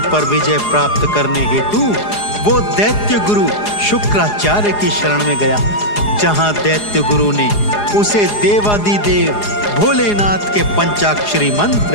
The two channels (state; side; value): late; right; 4.8 ms